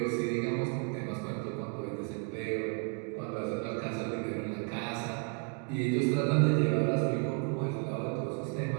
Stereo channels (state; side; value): quieter; left; 37.9 dB